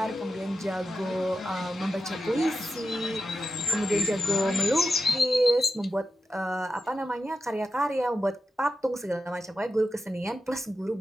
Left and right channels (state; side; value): normal; both; correlation 0.90